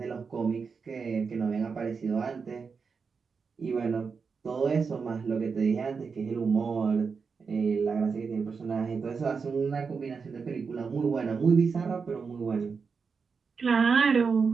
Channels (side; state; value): left; quieter; 5.3 dB